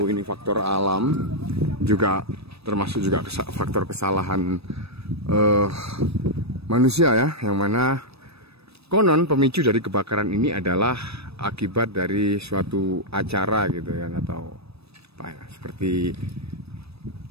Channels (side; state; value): left; late; 0.78 ms